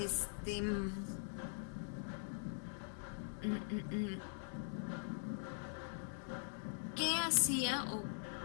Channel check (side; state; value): right; silent; digital silence